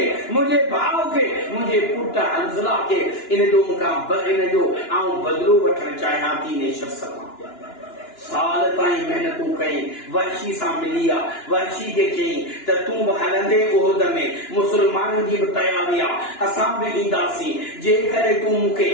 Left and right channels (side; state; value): right; late; 2.9 ms